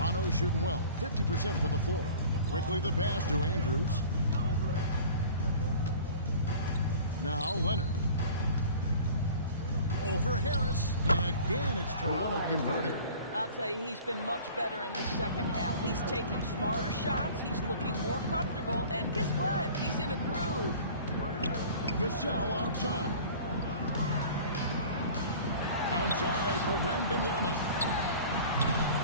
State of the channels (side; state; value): both; inverted; correlation -0.44